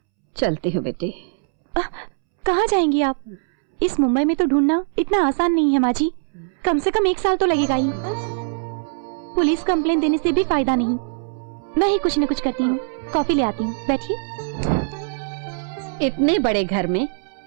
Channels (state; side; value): silent; left; 65 dB below the other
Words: चलती हूँ बेटी। कहाँ जाएंगी आप? इस मुंबई में तो ढूंढना इतना आसान नहीं है माँ जी। कम से कम 1 साल तो लगेगा ही। पुलिस कंप्लेन देने से भी फायदा नहीं। मैं ही कुछ न कुछ करती हूँ। कॉफी ले आती हूँ, बैठिए। इतने बड़े घर में